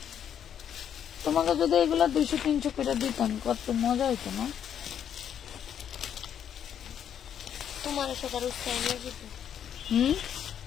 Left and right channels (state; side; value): quieter; right; 9.1 dB